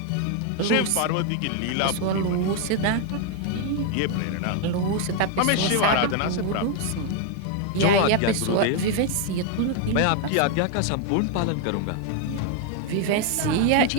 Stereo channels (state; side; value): different; both; correlation 0.01